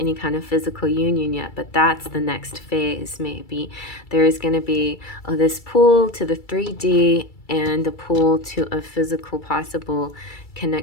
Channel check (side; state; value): right; late; 2.3 ms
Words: kind of physical union yet, but that's the next phase. Maybe there is going to be this pull to the 3D and the pull to a physical possible